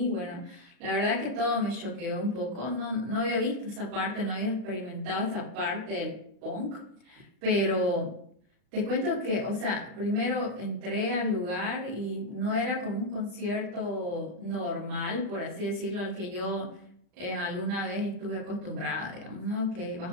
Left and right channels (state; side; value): late; left; 39 ms